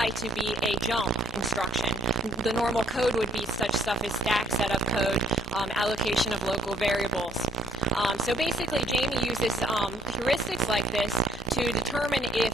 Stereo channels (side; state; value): both; normal; correlation 0.62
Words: to be a jump instruction. The normal code would be such stuff as stack setup code, allocation of local variables. So basically, Jamie uses heuristics like this to determine if